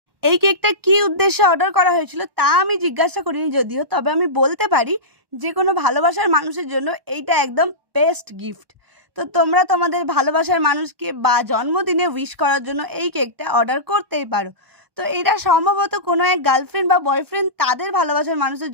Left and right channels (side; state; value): left; late; 1.1 ms